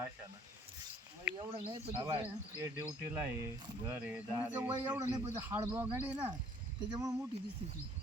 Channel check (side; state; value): both; normal; correlation 0.59